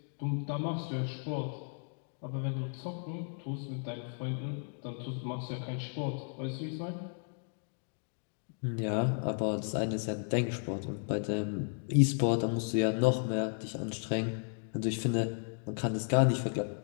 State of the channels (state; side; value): silent; right; 55 dB below the other